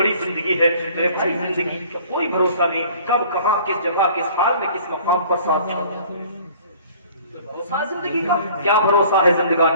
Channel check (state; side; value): inverted; both; correlation -0.51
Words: زندگی ہے۔ میرے بھائی زندگی کا کوئی بھروسہ نہیں، کب کہاں کس جگہ کس حال میں کس مقام پر ساتھ چھوڑ۔ بھروسہ زندگی کا کیا بھروسہ ہے